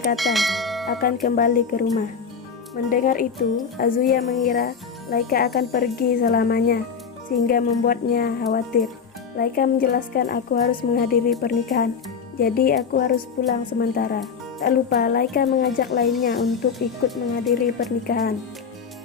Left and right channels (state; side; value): quieter; right; 6.1 dB